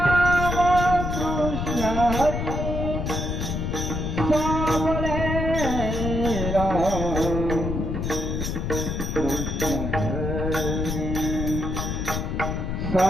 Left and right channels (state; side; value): noise; left; rumble, 2 dB below the sound